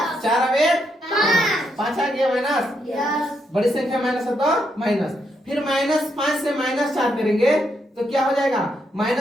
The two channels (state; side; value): normal; both; correlation 0.79